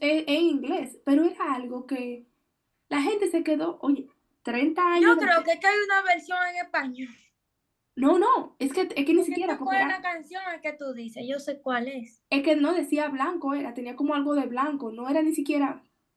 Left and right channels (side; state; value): both; identical; correlation 1.00